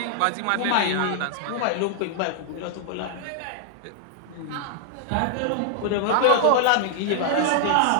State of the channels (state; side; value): different; both; correlation -0.01